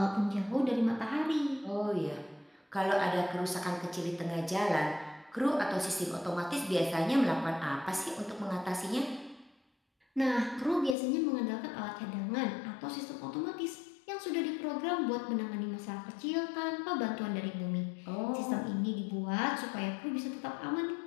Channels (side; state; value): right; drops out; at 11.0 s